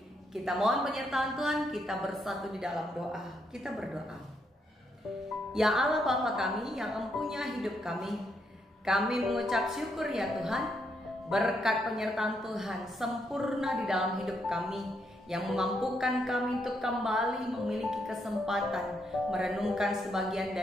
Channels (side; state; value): both; normal; correlation 0.77